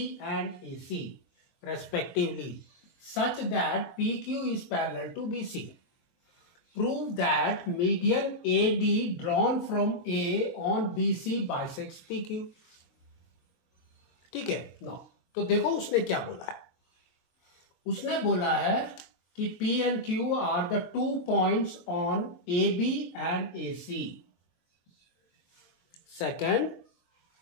and A C respectively such that P Q is parallel to B C. Prove that median A D drawn from A on B C bisects P Q. ठीक है no, तो देखो उसने क्या बोला है। उसने बोला है कि P and Q are the 2 points on AB and AC. Second,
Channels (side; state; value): right; late; 23 ms